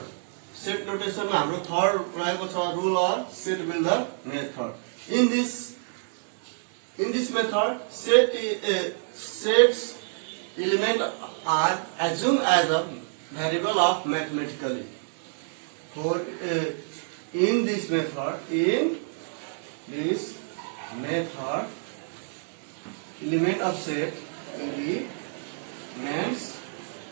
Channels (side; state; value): left; silent; digital silence